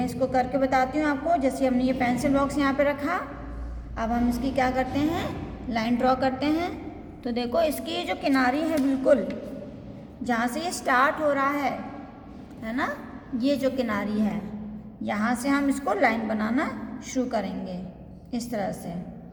इसको करके बताती हूँ आपको। जैसे हमने ये पेंसिल बॉक्स यहाँ पे रखा, अब हम इसकी क्या करते हैं, लाइन ड्रॉ करते हैं। तो देखो इसकी जो किनारी है बिल्कुल जहाँ से ये स्टार्ट हो रहा है ना, ये जो किनारी है यहाँ से हम इसको लाइन बनाना शुरू करेंगे इस तरह से।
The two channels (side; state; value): both; identical; correlation 1.00